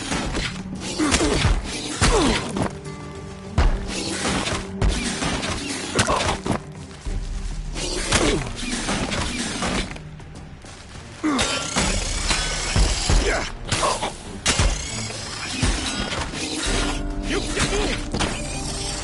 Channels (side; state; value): both; identical; correlation 1.00